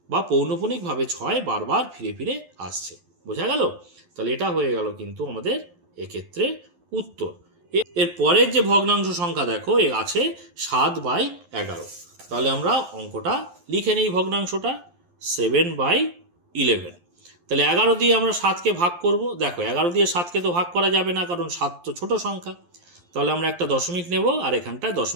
বা পৌনঃপুনিকভাবে 6 বারবার ফিরে ফিরে আসছে, বোঝা গেল। তাহলে এটা হয়ে গেল কিন্তু আমাদের এক্ষেত্রে উত্তর। এর পরের যে ভগ্নাংশ সংখ্যা দেখো এ আছে 7/11, তাহলে আমরা অঙ্কটা লিখে নিই, ভগ্নাংশটা 7/11। তাহলে 11 দিয়ে আমরা 7কে ভাগ করব, দেখো 11 দিয়ে 7কে তো ভাগ করা যাবে না, কারণ 7 তো ছোট সংখ্যা, তাহলে আমরা একটা দশমিক নেব, আর এখানটায়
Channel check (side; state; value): left; late; 11 ms